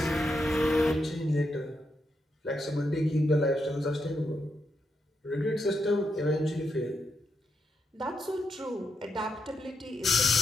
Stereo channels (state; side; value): normal; both; correlation 0.82